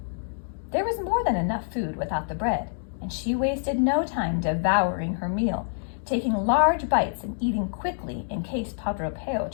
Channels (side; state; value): right; silent; digital silence